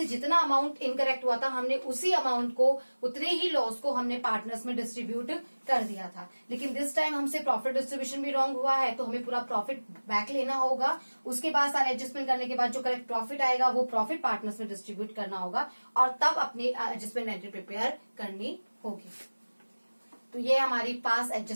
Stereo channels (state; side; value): inverted; both; correlation -1.00